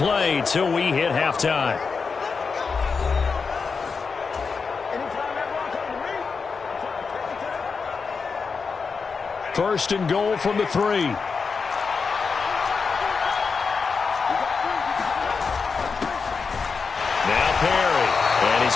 till we hit halftime. First and goal from the 3. Now Perry. And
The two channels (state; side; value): quieter; right; 5.1 dB